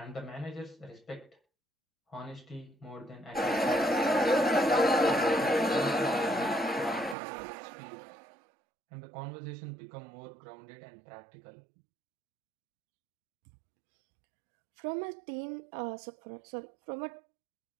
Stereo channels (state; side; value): drops out; left; at 7.2 s